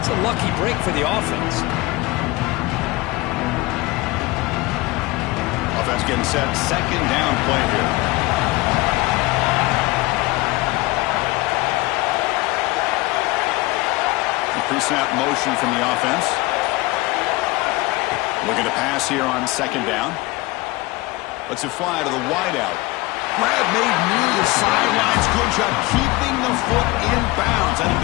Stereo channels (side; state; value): right; quieter; 21.3 dB